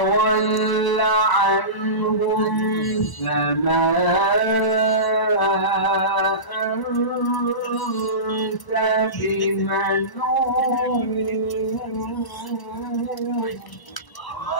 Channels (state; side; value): late; right; 1.0 ms